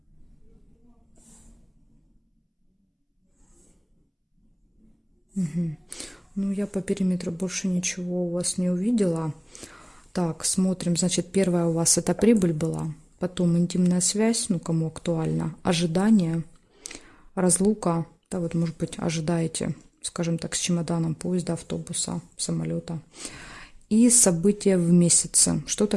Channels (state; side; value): identical; both; correlation 1.00